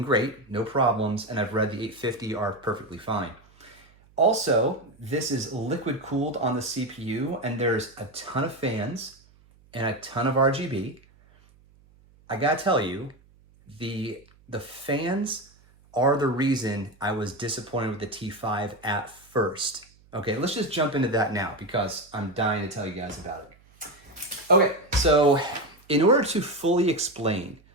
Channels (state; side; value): noise; right; hum, 29 dB below the sound